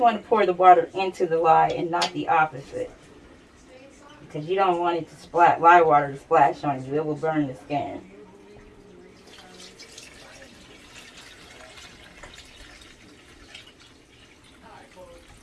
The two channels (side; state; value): both; identical; correlation 1.00